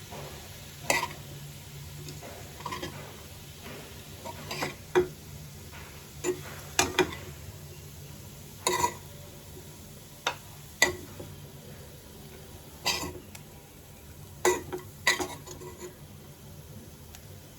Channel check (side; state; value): both; identical; correlation 1.00